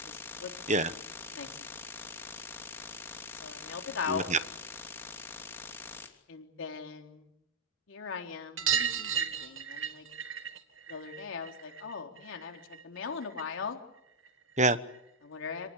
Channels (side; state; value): both; normal; correlation -0.04